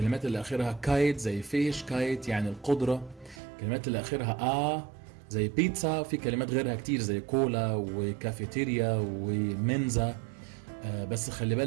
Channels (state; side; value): drops out; left; at 3.4 s